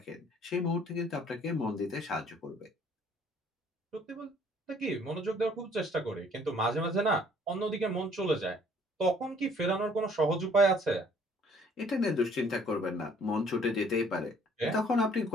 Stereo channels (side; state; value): both; normal; correlation 0.59